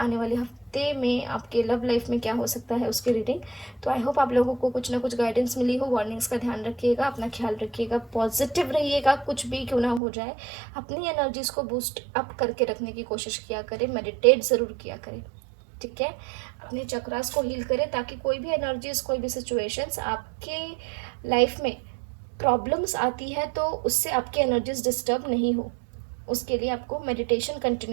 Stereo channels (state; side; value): drops out; left; at 10.0 s